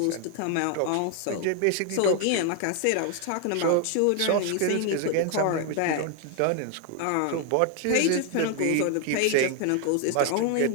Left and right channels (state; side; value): different; both; correlation 0.00